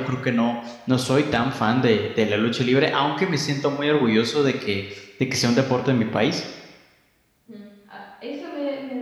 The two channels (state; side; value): identical; both; correlation 1.00